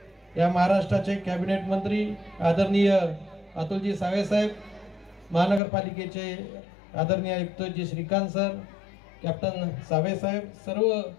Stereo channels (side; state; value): right; drops out; at 5.6 s